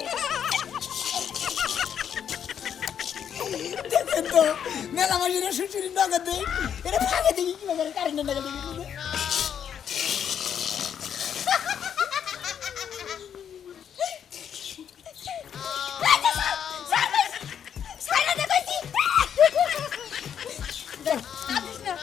দেখেন তো মেলা মাঝে সুসুরি নগদ দেয় এটা ফাঁকে দেখি কি করে কারেন্টের নগদ দেখি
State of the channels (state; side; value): quieter; right; 8.5 dB